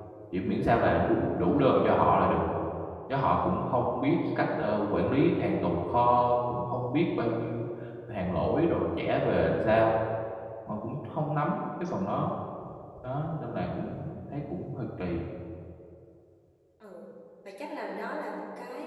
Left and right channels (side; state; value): both; identical; correlation 1.00